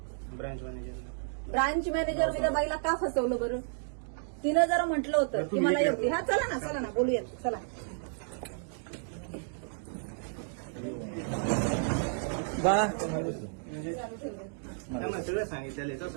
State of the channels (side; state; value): left; silent; digital silence